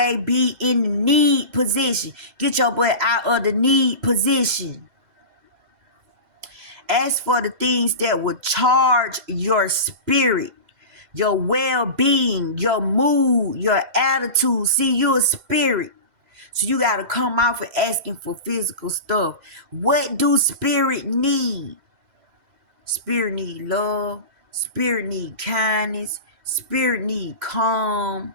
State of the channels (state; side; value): late; left; 2.0 ms